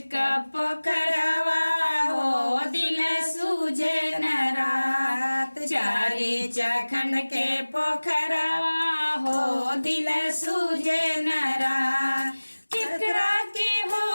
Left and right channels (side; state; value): both; inverted; correlation -1.00